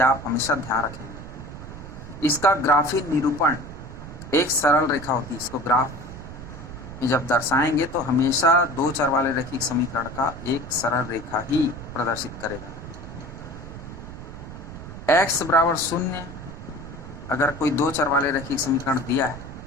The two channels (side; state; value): right; noise; rumble, 12 dB below the sound